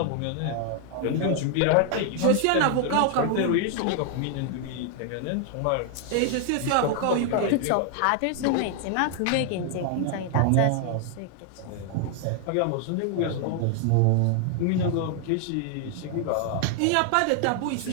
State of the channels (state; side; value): different; both; correlation 0.00